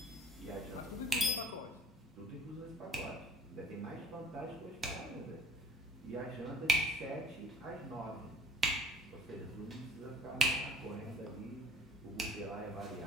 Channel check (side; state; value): both; normal; correlation 0.50